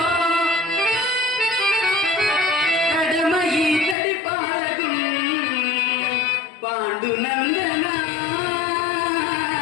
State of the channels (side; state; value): right; drops out; at 4.0 s